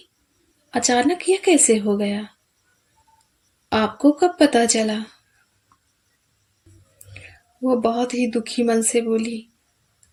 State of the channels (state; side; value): identical; both; correlation 1.00